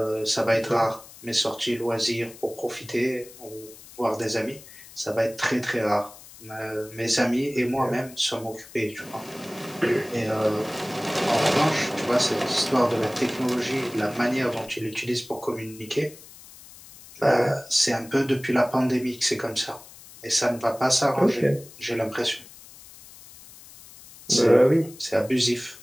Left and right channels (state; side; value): noise; left; hiss, 19 dB below the sound